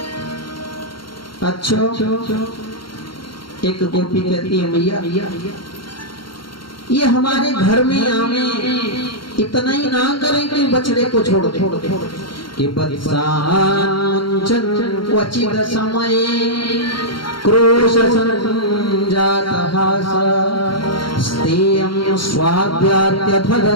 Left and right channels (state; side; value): late; right; 0.73 ms